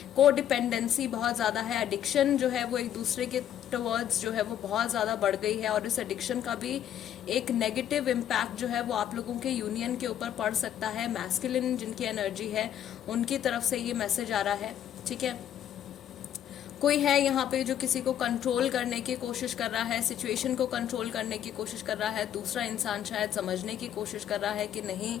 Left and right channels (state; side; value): quieter; right; 10.4 dB